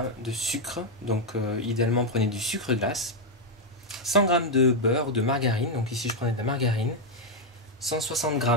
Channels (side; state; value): both; normal; correlation 0.01